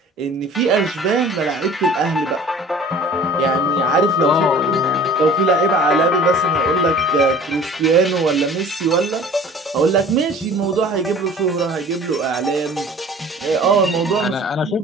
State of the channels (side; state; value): both; normal; correlation 0.46